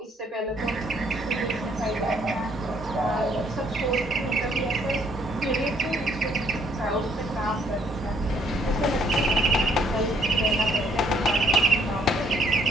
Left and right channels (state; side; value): normal; both; correlation 0.66